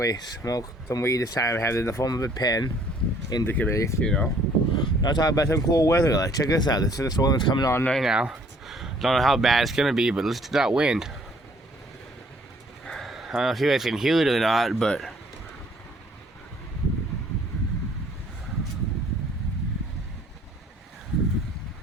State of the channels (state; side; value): normal; both; correlation 0.60